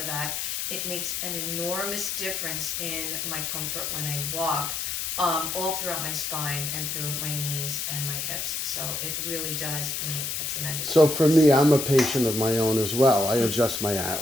that. It makes an enormous difference in my comfort when I walk. All throughout my spine and through my knees and my hips. So it really does make a tremendous So difference. for me, I'm a patient of my own as well. I adjust my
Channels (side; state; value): left; noise; hiss, 2 dB below the sound